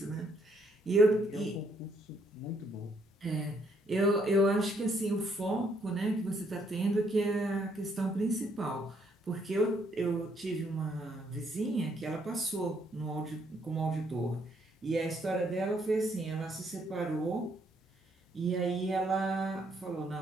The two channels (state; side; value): normal; both; correlation 0.70